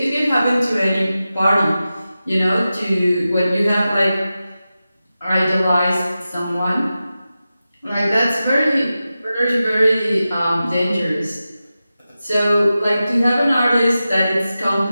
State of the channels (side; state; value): both; inverted; correlation -0.93